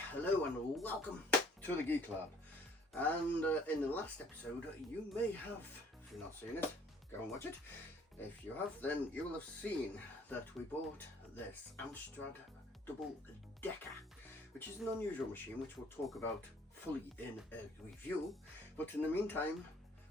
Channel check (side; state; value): both; normal; correlation 0.58